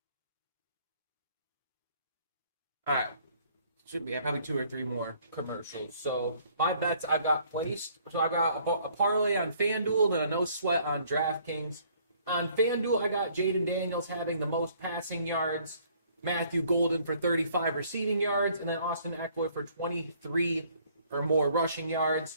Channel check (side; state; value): both; inverted; correlation -0.61